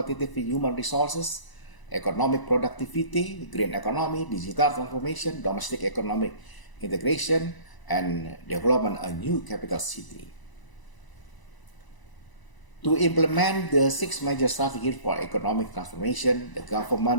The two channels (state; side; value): late; right; 1.0 ms